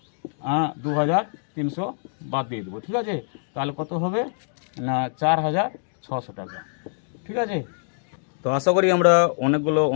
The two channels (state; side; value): silent; right; digital silence